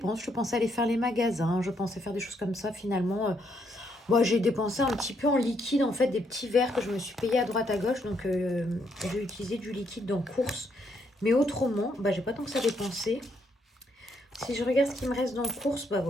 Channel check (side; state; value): both; normal; correlation 0.74